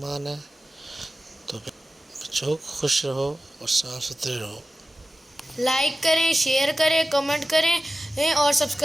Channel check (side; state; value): both; normal; correlation 0.94